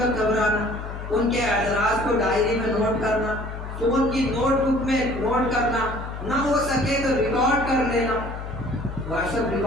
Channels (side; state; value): left; noise; hum, 8 dB below the sound